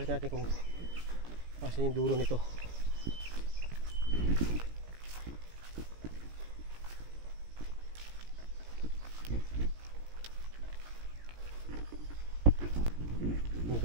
natin kung asan yung dulo nito.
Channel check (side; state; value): left; late; 17 ms